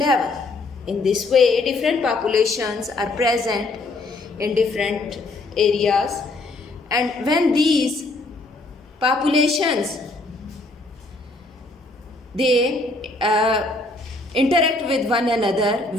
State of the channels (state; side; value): quieter; right; 3.0 dB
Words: In this way, different populations are present in different areas, and when these populations, they interact with one another